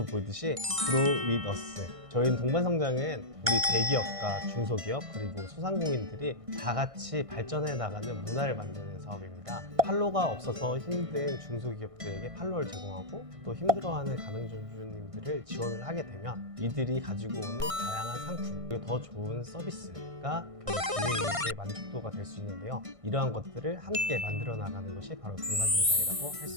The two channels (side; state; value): left; late; 1.6 ms